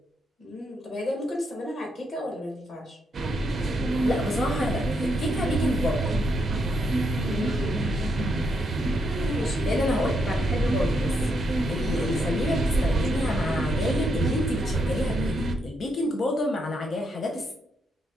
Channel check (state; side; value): normal; both; correlation 0.79